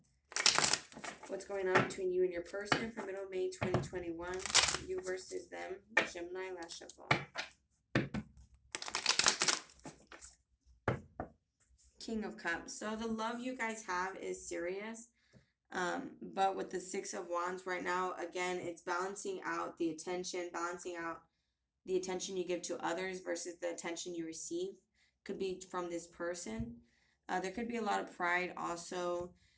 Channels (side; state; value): both; identical; correlation 1.00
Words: What's going on between you and your person for middle of May 2021? You versus them. Gemini, last shuffle. King of Cups. So the love you guys have is serious. But with the 6 of Wands right now, again, it's balancing out the attention, the attention you give to others versus the attention you receive. Could be from this person. There could be a lot of pride also,